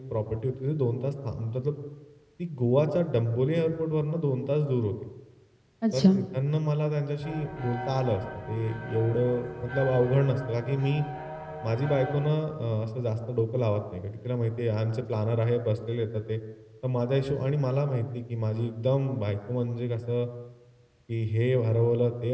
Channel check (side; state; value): both; identical; correlation 1.00